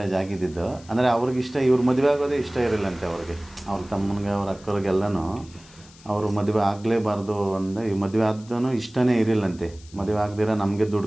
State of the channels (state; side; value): noise; left; hiss, 24 dB below the sound